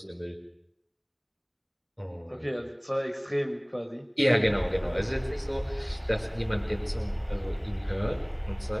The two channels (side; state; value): both; identical; correlation 1.00